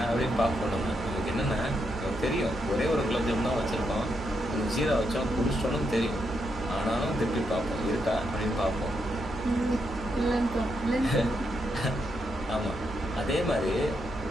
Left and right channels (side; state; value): both; normal; correlation 0.81